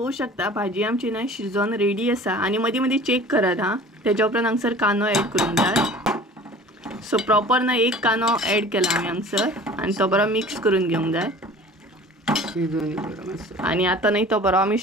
शकता भाजी आमची ना शिजोवन रेडी आसा. आनी मदीं मदीं चेक करात हां. तेच्या उपरांत हांगसर कांदो ऍड करूंक जाय. सो प्रॉपर ना एक कांदो ऍड केला आमी हांगसर आनी तो बरो मिक्स करून घेवंक जाय. आणि आता नाही तो बरो आमी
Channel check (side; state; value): both; normal; correlation 0.44